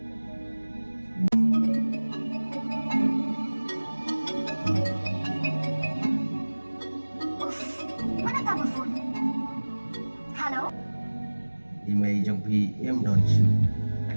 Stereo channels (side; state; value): both; inverted; correlation -1.00